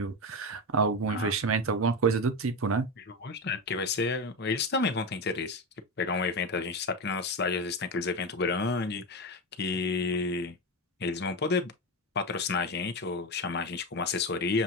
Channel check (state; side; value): normal; both; correlation 0.16